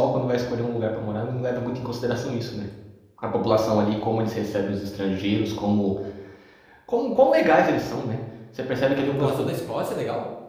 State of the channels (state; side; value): identical; both; correlation 1.00